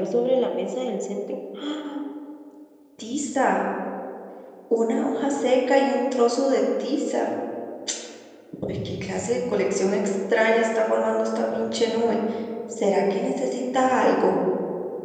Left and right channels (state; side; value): identical; both; correlation 1.00